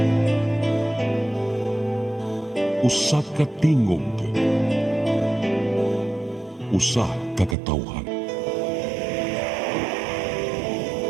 usa ka tingog, usa ka katawhan.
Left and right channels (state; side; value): drops out; left; at 7.6 s